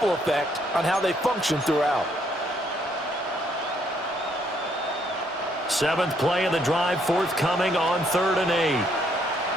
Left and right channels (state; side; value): normal; both; correlation 0.70